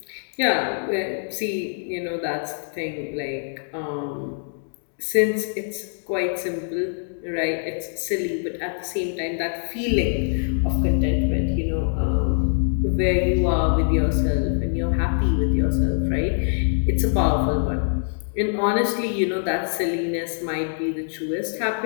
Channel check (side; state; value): right; silent; digital silence